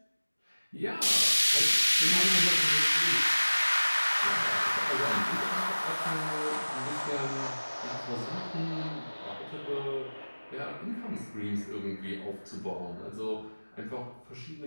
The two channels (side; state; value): both; inverted; correlation -1.00